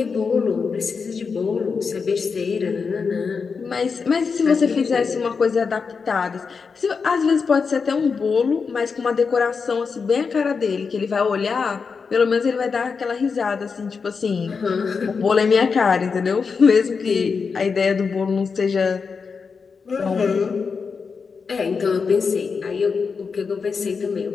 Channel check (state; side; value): quieter; right; 5.3 dB